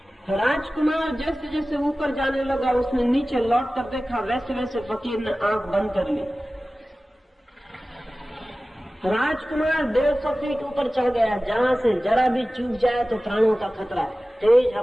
राजकुमार जैसे जैसे ऊपर जाने लगा उसने नीचे लौट कर देखा, वैसे वैसे फकीर ने आंख बंद कर ली। राजकुमार 150 फीट ऊपर चढ़ गया, जहां से जरा भी चूक जाए तो प्राणों का खतरा है। तेज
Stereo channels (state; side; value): normal; both; correlation 0.96